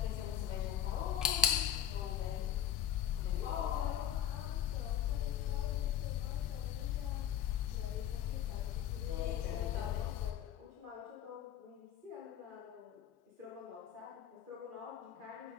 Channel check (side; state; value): right; quieter; 10.5 dB